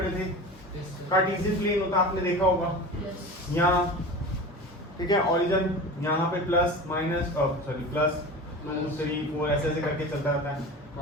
थे। कार्टेशियन प्लेन होता आपने देखा होगा, यहाँ ठीक है, ओरिजिन यहाँ पे प्लस माइनस सॉरी प्लस 2 3 4 ऐसे ऐसे करके चलता रहता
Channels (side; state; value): both; normal; correlation 0.32